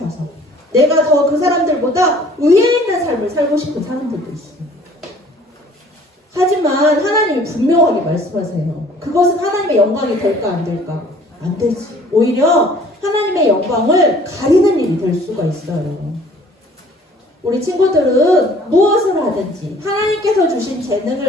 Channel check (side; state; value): both; normal; correlation 0.54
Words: 내가 더 그 사람들보다 위에 있는 삶을 살고 싶은 사람들도 있어요. 하지만 하나님이 분명하게 말씀하세요. 그것은 하나님의 영광이 될까 안 될까? 안 되지. 오히려 하나님의 영광을 가리는 일이 될 수가 있어요. 우리 친구들은 무엇을 하든지 하나님께서 주신